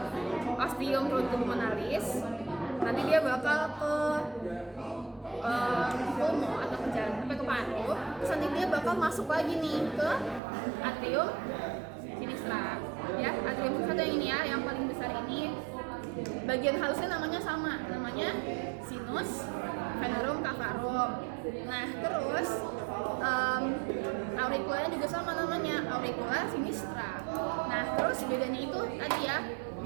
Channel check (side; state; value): left; drops out; at 10.4 s